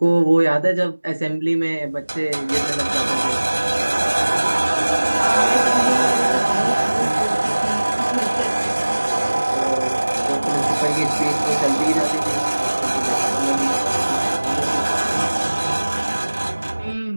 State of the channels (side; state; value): both; inverted; correlation -1.00